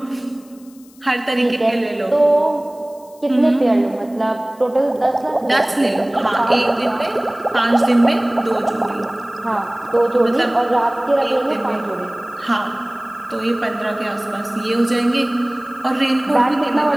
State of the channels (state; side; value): noise; left; hiss, 27 dB below the sound